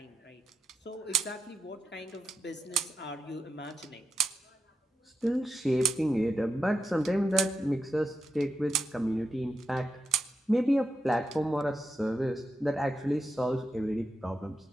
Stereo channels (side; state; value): both; normal; correlation 0.86